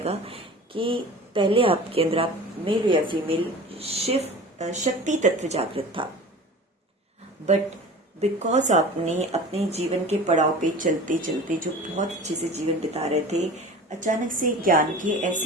कि पहले आपके अंदर, आप मेल हो या फीमेल, शिव शक्ति तत्व जागृत था, बट बिकॉज आपने अपने जीवन के पड़ाव पे चलते चलते जो बहुत अच्छे से जीवन बिता रहे थे, अचानक से ज्ञान के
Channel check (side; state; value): both; normal; correlation 0.38